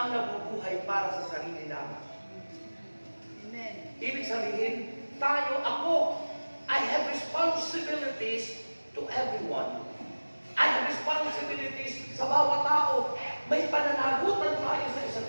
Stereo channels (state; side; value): inverted; both; correlation -1.00